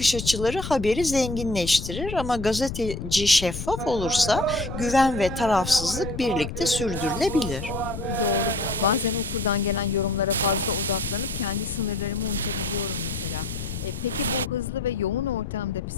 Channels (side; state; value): left; noise; rumble, 7 dB below the sound